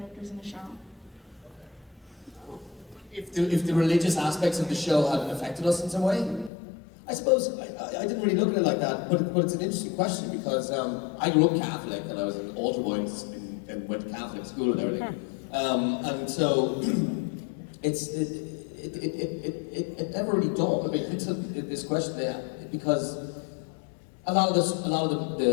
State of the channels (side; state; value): right; drops out; at 6.5 s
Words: in the show. If the religious aspects of the show have affected us in some way, I suppose I didn't really look at it like that, but it's an interesting question because I grew up Catholic and I was an altar boy and went to Catholic school and everything, and so it never really dawned on me until this question there, because a lot of